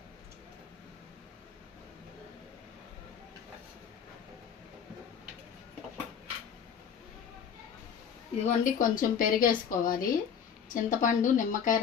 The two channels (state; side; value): quieter; right; 7.6 dB